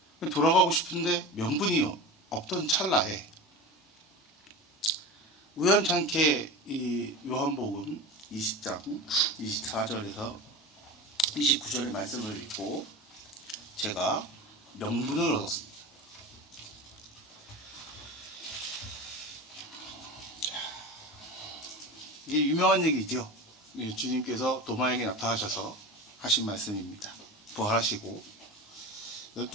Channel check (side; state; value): both; normal; correlation 0.29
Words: 돌아가고 싶은데 명분이 없던 찰나에 우연찮게 이 요한복음 20장 24절에서 29절의 말씀을 읽고 제가 명분을 얻었습니다. 이게 유명한 얘기죠. 주님께서 도마에게 나타나셔서 하신 말씀입니다. 부활하시고